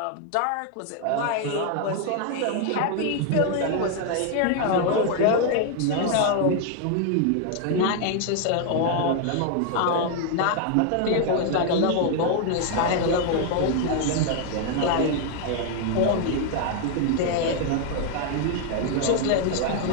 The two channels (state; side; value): different; both; correlation 0.00